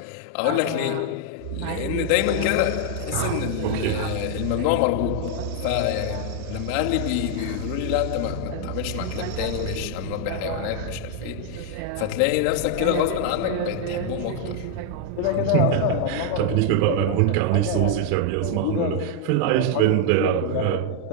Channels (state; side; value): different; both; correlation 0.00